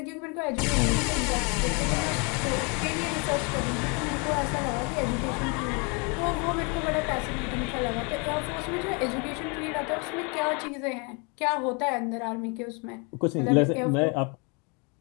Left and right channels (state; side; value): quieter; right; 33.1 dB